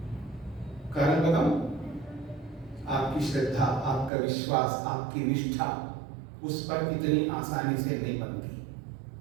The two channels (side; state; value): left; drops out; at 4.1 s